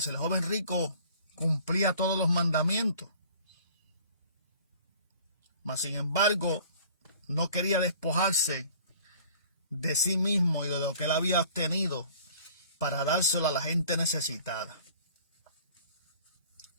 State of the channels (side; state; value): both; inverted; correlation -0.50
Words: el joven rico cumplía todos los mandamientos. Mas, sin embargo, no quería despojarse de sí mismo y de lo que él había obtenido para dárselo a la gente necesitada.